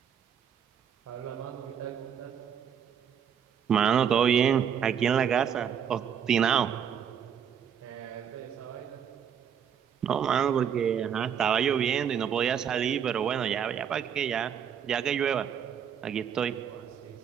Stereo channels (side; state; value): left; quieter; 8.3 dB